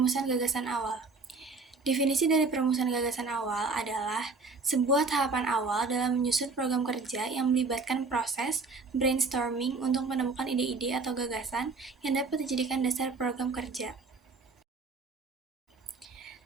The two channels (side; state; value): left; quieter; 4.1 dB